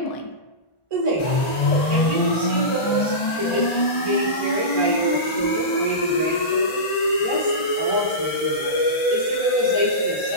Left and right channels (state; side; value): late; right; 1.9 ms